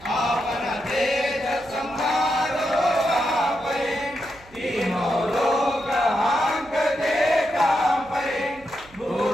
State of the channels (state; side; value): noise; right; hum, 24 dB below the sound